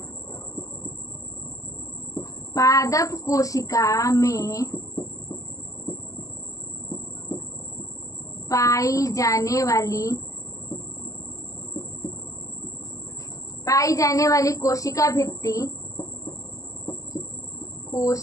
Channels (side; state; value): right; late; 0.16 ms